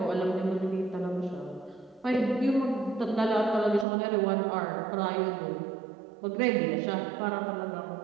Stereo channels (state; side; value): drops out; left; at 3.9 s